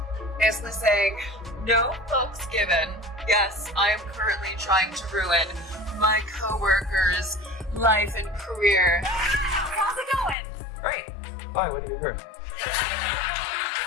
Basically saying, no fucks given. Yes, I am currently trying to ruin my co-worker's life and career. How's it going? Great. Fine, what do you hear?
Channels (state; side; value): drops out; right; at 10.4 s